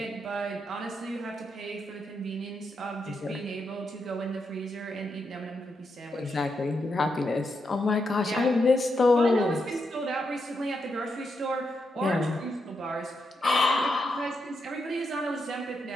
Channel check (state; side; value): normal; both; correlation 0.83